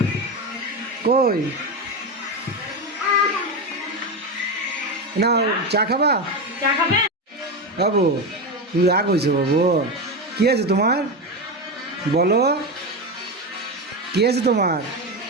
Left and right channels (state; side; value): normal; both; correlation 0.16